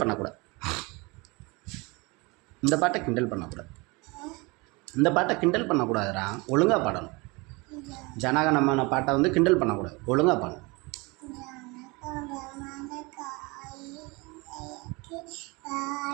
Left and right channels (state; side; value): quieter; left; 26.1 dB